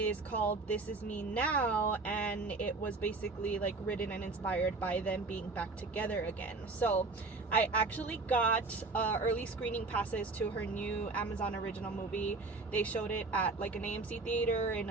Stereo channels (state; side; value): quieter; left; 3.6 dB